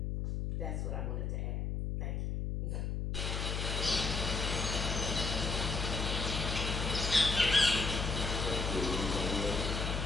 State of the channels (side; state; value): left; noise; hum, 1 dB below the sound